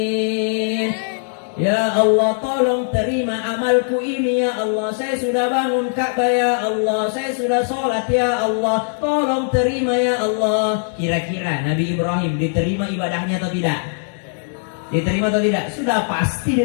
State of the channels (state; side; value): silent; right; 66 dB below the other